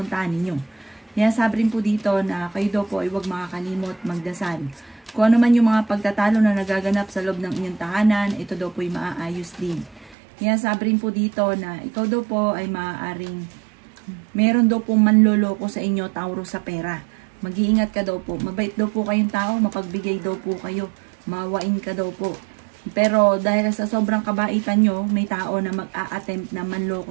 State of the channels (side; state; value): left; drops out; at 10.2 s